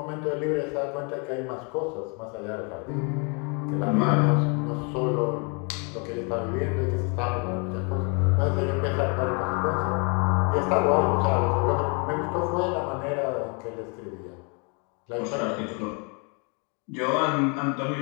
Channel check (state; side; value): quieter; right; 34.7 dB